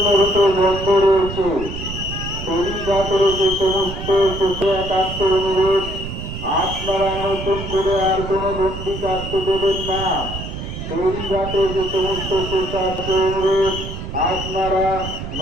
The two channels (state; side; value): noise; right; rumble, 8 dB below the sound